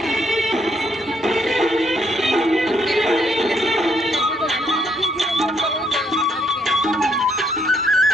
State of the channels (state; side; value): normal; both; correlation 0.72